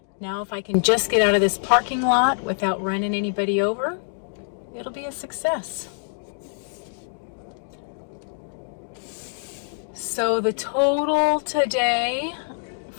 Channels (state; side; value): silent; right; digital silence